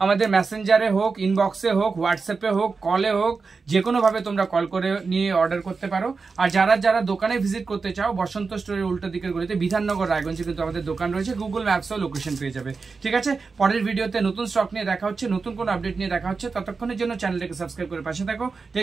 মেসেঞ্জারে হোক, ইনবক্সে হোক, হোয়াটসঅ্যাপে হোক, কলে হোক, যে কোনোভাবে তোমরা কল করে নিয়ে অর্ডার করতে পারো। আর যারা দোকানে ভিজিট করতে চাও, বসন্ত স্টোরের উল্টো দিকের গলিতে বিধাননগর রায়গঞ্জে কিন্তু আমাদের দোকান রয়েছে, গুগল ম্যাপসও লোকেশন পেয়ে যাবে। ঠিক আছে, পরের ভিডিওতে নতুন স্টক নিয়ে দেখা হচ্ছে, নতুন কোনো আপডেট নিয়ে দেখা হচ্ছে। ততক্ষণের জন্য চ্যানেলটাকে সাবস্ক্রাইব করে পাশে থাকো।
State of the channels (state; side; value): quieter; left; 4.6 dB